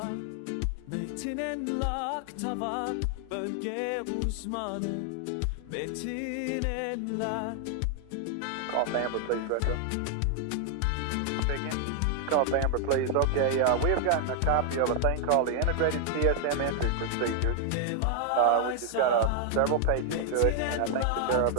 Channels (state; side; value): different; both; correlation 0.00